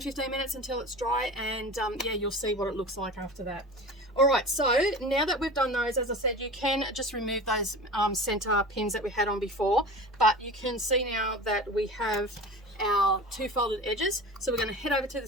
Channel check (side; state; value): both; normal; correlation 0.34